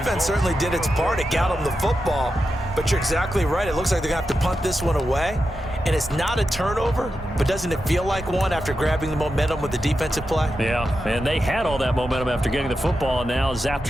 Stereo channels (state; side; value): normal; both; correlation 0.89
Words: certainly did its part. It got them the football. But you're exactly right. It looks like they're going to have to punt this one away. And it's not a turnover, but doesn't it feel like one after grabbing the momentum with the defensive play? Yeah, and they had all that momentum after getting the football, and now zapped